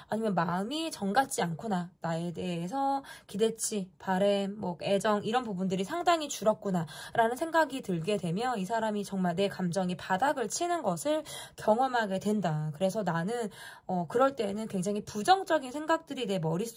아니면 마음이 정같지 않구나, 나에 대해서 기대치, 바램, 애정 이런 부분들이 상당히 줄었구나 라는 생각이 들게 되면 이 사람이 정말 내 감정이 바닥을 치는 것을 경험하게 된다. 그래서 나는 그럴 때는 굉장히 부정적인 생각들이 내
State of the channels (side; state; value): both; identical; correlation 1.00